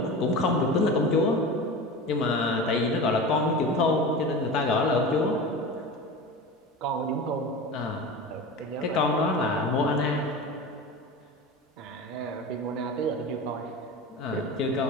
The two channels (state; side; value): normal; both; correlation 0.30